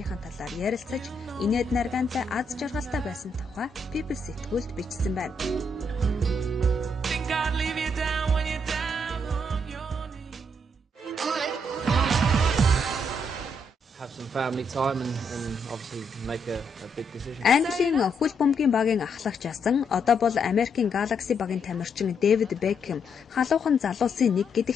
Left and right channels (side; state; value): both; normal; correlation 0.76